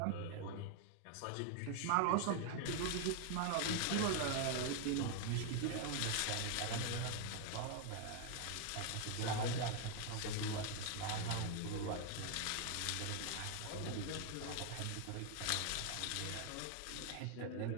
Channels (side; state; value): both; different; correlation 0.00